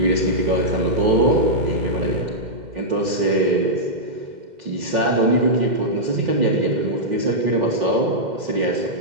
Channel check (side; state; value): left; late; 2.1 ms